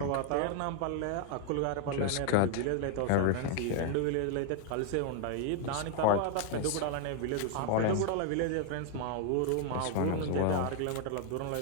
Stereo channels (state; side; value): different; both; correlation 0.00